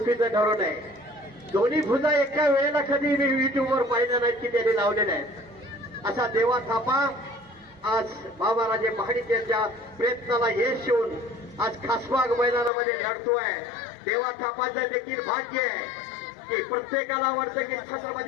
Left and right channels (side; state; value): right; drops out; at 12.7 s